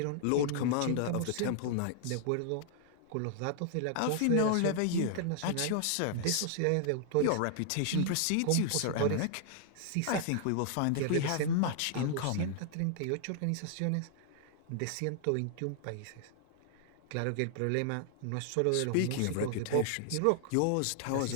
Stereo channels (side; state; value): both; different; correlation -0.01